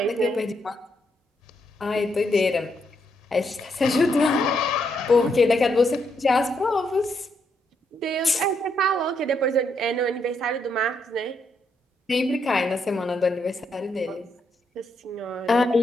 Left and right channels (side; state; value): both; normal; correlation 0.77